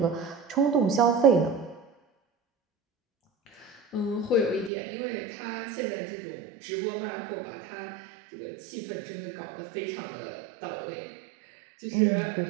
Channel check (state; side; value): drops out; left; at 4.7 s